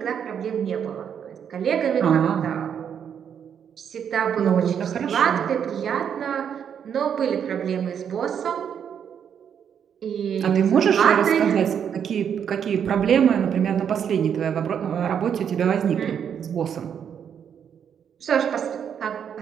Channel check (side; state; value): left; quieter; 8.1 dB